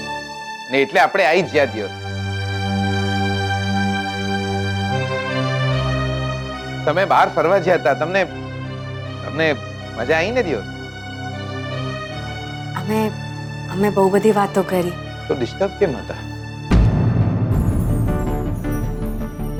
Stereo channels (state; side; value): identical; both; correlation 1.00